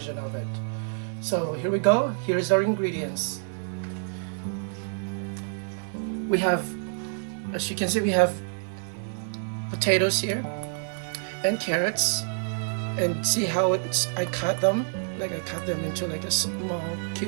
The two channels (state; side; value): silent; left; 60 dB below the other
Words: of it. So here we go. Here's our ingredients. We have, as you can see, we have potatoes here and carrots, and see how I cut them. Like I cut them into like a small